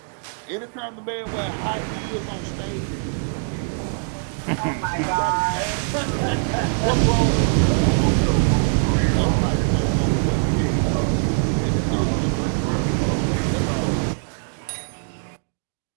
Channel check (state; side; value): silent; left; digital silence